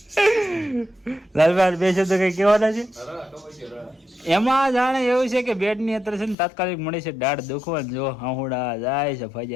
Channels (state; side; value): drops out; right; at 6.4 s